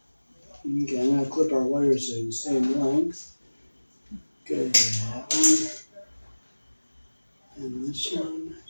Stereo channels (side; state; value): both; inverted; correlation -1.00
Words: Okay, I'm going to clip our wires to the same length. Good, that one. And this one.